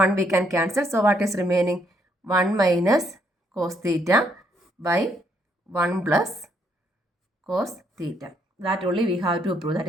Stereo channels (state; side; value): normal; both; correlation 0.72